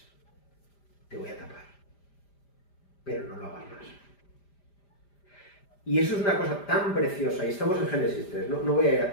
te voy a tapar. Pero no lo hagas más. Y eso es una cosa tan preciosa, y estamos en Génesis 3, no voy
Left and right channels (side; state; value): right; late; 5.0 ms